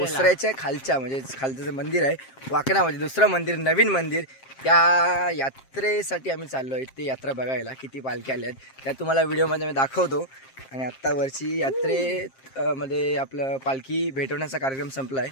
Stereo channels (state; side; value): late; right; 7.5 ms